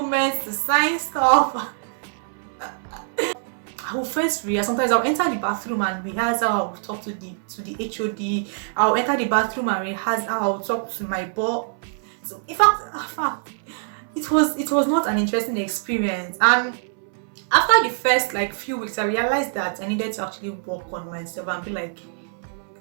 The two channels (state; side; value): silent; left; 63 dB below the other